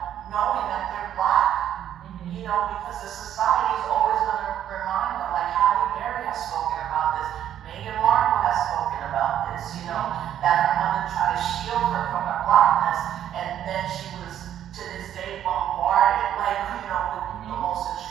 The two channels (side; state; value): left; quieter; 10.6 dB